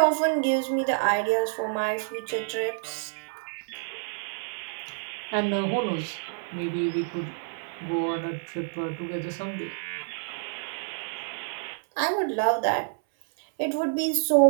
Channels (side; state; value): left; silent; 59 dB below the other